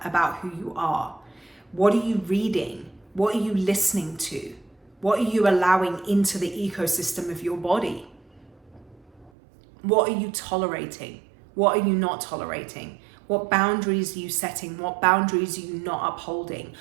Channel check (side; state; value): left; drops out; at 9.3 s